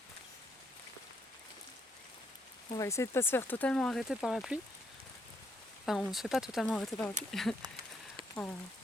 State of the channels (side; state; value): both; normal; correlation 0.74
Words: On va essayer de pas se faire totalement arrêter par la pluie. Enfin, on se fait pas totalement arrêter par la pluie. En